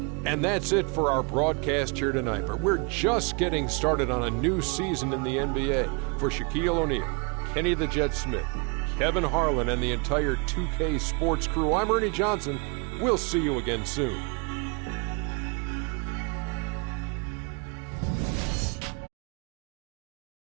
And that's it for our broadcast here tonight. But we're just getting started on a new season in the NBA. For Shaquille O'Neal, Kenny the Jet Smith, Kevin Harlan, and the entire 2K Sports crew, I'm Ernie Johnson. We'll see you again soon.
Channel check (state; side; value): quieter; left; 33.4 dB